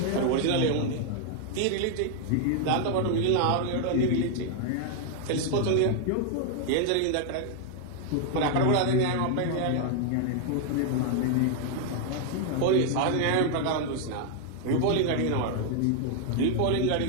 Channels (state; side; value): different; both; correlation 0.00